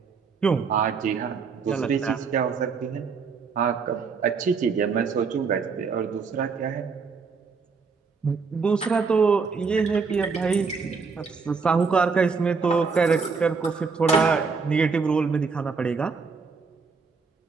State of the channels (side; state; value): left; quieter; 5.1 dB